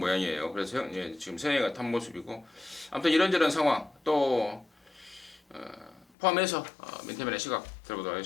그래서 지금 세영이가 탄 모습이고 아무튼 이런저런 상황 또 포함해서 민태민의 시각 들어보도록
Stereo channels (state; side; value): drops out; right; at 6.1 s